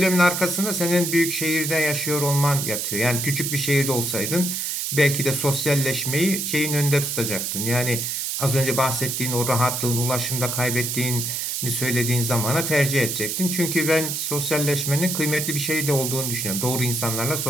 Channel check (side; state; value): right; noise; hiss, 2 dB below the sound